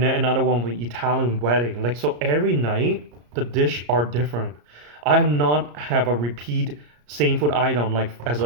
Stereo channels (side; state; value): left; late; 34 ms